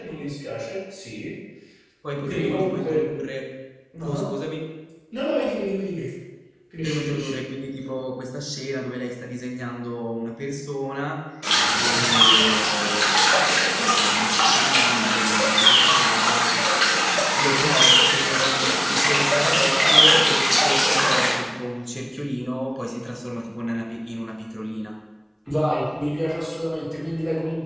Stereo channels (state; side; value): identical; both; correlation 1.00